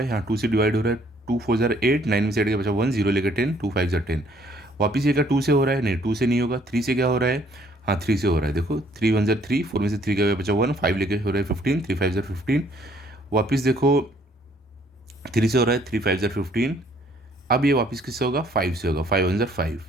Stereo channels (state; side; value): normal; both; correlation 0.63